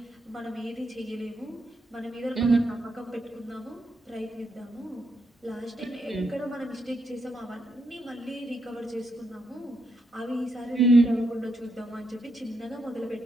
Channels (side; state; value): both; normal; correlation 0.80